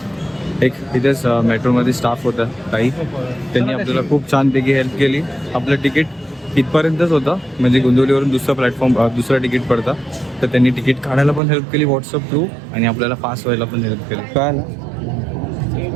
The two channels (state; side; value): drops out; left; at 11.4 s